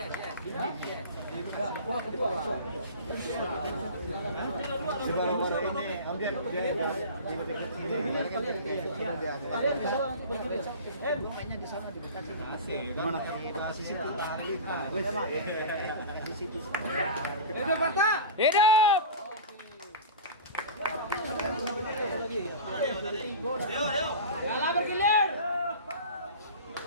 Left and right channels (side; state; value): both; inverted; correlation -0.32